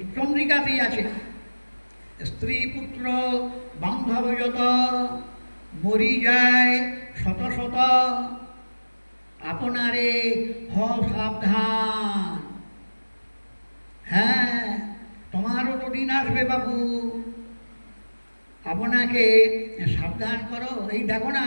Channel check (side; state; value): both; inverted; correlation -1.00